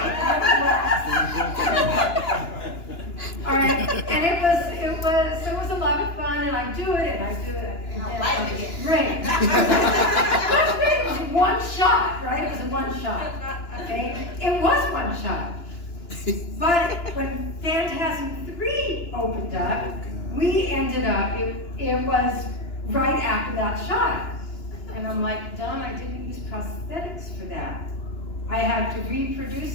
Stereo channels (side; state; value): right; late; 2.9 ms